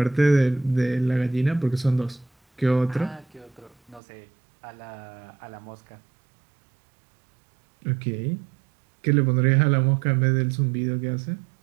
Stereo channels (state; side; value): drops out; left; at 4.0 s